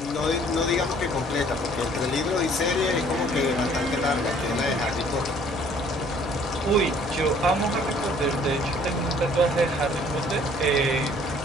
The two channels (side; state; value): both; normal; correlation 0.57